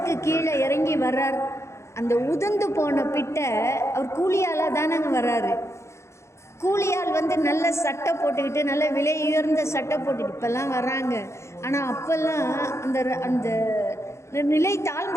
கீழே இறங்கி வர்றார். அந்த உதிர்ந்து போன பிட்டை அவர் கூலியாலாக தானங்க வர்றாரு. கூலியால் வந்து நல்ல சட்டை போட்டுக்கிட்டு, நல்ல விலை உயர்ந்த சட்டை போட்டுக்கிட்டு இப்போல்லாம் வர்றாங்க. ஆனால் அப்போல்லாம் அந்த நிலை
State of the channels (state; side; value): late; right; 0.13 ms